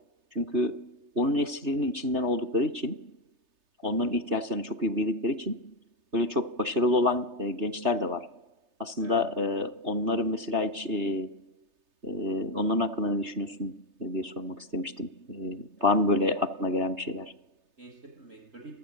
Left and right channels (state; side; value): late; left; 3.3 ms